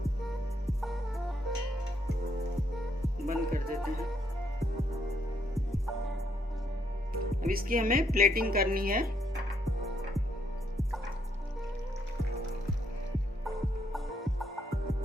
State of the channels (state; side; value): normal; both; correlation 0.73